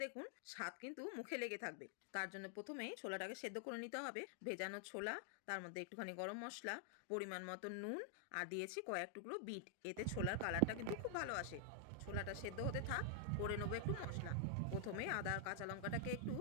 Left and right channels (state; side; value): different; both; correlation 0.00